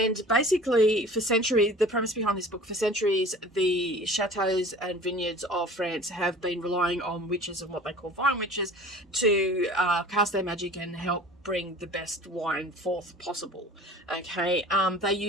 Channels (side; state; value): both; normal; correlation 0.43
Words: basically, for centuries, the premise behind this book, for centuries, the chateaux and vineyards of France have been relying on witches and what they call vine witches to cast their magic and help bring the best wine forth possible. Okay, they